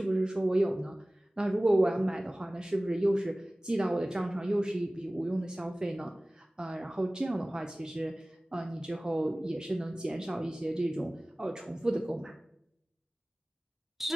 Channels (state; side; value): normal; both; correlation 0.98